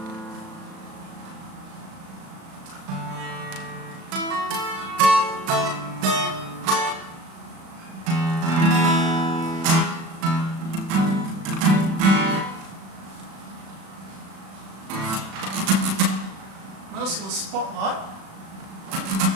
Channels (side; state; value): left; late; 36 ms